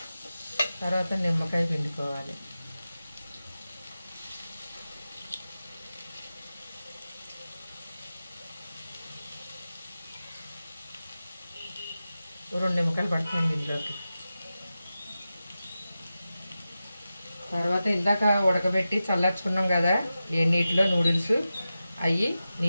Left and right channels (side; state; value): both; inverted; correlation -0.93